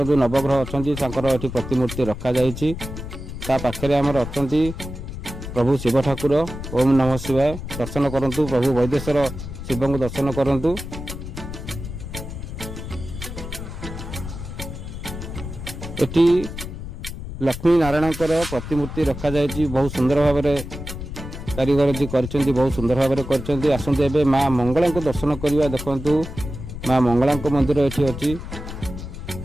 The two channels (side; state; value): left; noise; rumble, 9 dB below the sound